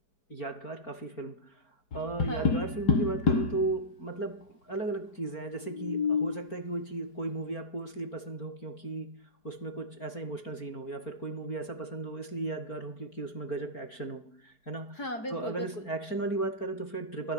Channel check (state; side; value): late; right; 4.4 ms